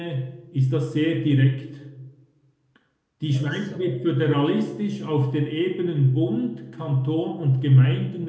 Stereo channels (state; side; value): identical; both; correlation 1.00